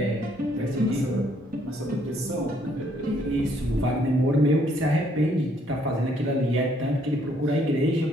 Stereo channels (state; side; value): normal; both; correlation 0.67